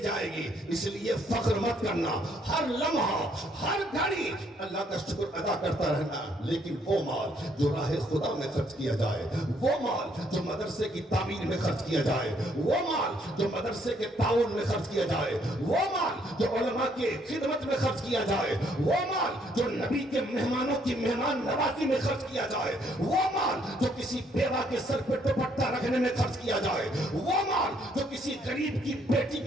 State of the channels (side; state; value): both; normal; correlation 0.68